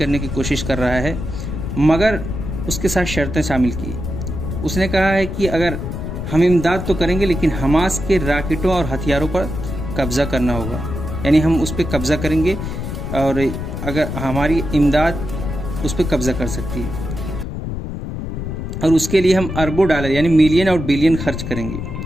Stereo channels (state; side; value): noise; left; rumble, 5 dB below the sound